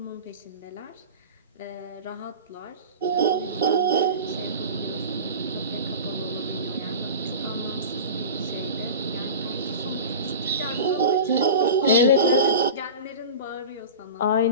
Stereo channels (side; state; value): both; inverted; correlation -0.32